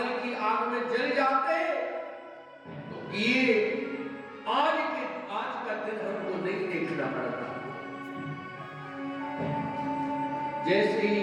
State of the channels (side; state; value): both; identical; correlation 1.00